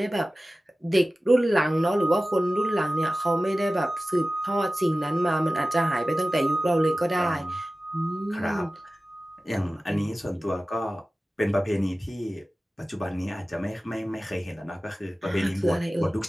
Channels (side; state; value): both; normal; correlation 0.96